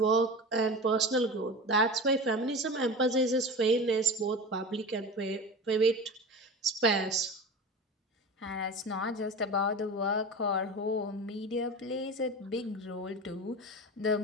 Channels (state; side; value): normal; both; correlation 0.30